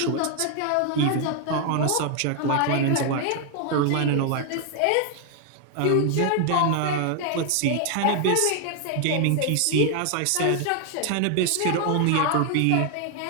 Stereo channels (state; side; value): different; both; correlation 0.00